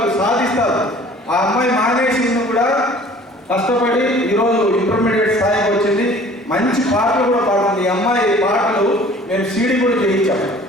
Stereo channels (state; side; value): normal; both; correlation 0.50